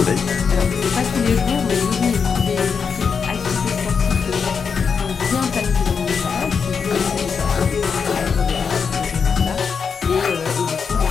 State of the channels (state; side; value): quieter; right; 6.0 dB